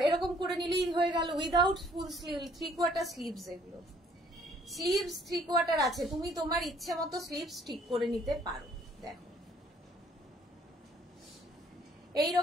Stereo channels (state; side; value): normal; both; correlation 0.61